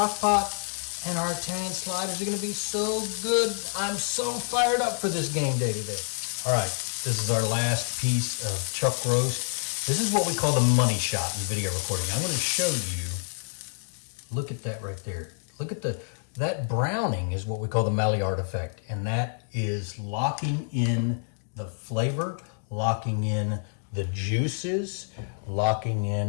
pot, and our Italian sliders are going to be so good. I'm so fired up for this game day today. All right, this is our last piece of chuck roast. This is what we call the money shot in video recording. I'm going to show you, look at that right there. Look at that browning is what we call the Maillard effect, and that is locking in the flavor, locking in the juices, locking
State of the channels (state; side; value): silent; right; digital silence